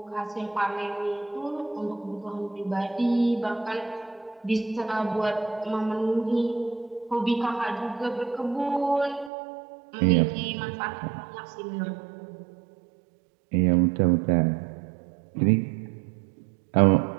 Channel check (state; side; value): drops out; left; at 9.3 s